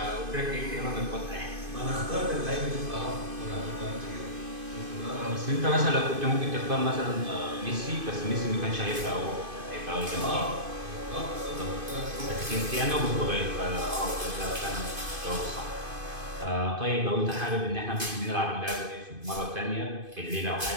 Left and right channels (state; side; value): late; left; 2.5 ms